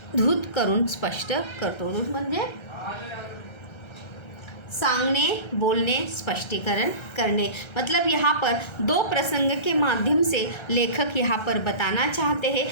करून स्पष्ट करतो। म्हणजे सांगने, बोलने, स्पष्टीकरण करने। मतलब यहाँ पर दो प्रसंग के माध्यम से लेखक यहाँ पर बताना चाहते हैं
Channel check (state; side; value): late; right; 1.3 ms